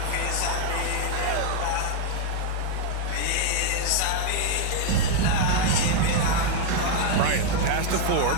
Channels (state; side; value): different; both; correlation 0.00